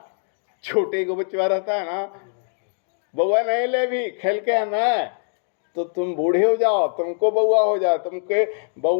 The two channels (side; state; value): right; silent; digital silence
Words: छोटे को बच्चा रहता है ना, बउआ नहीं ले भी खेल के आना, तो तुम बूढ़े हो जाओ, तुमको बउआ हो जाए, तुमके